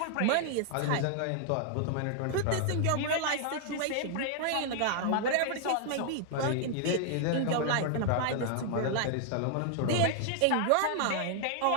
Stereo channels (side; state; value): both; different; correlation 0.00